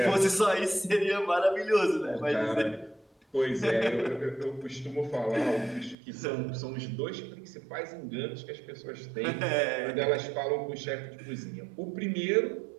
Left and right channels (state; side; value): drops out; left; at 6.0 s